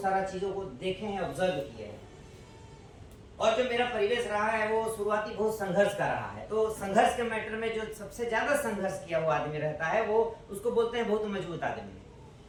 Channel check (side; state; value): both; identical; correlation 1.00